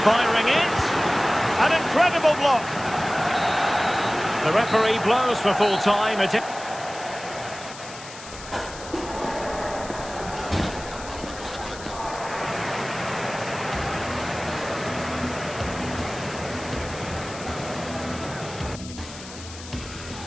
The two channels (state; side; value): noise; left; hiss, 14 dB below the sound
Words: firing it. An incredible block. The referee blows for full time.